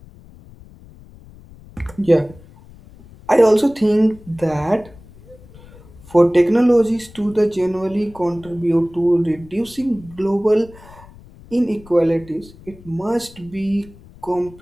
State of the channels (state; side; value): noise; left; rumble, 22 dB below the sound